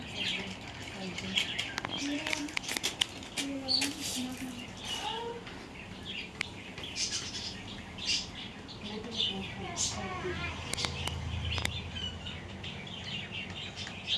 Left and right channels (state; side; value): identical; both; correlation 1.00